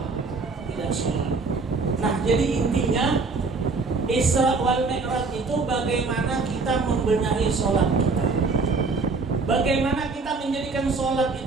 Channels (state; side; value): quieter; left; 4.1 dB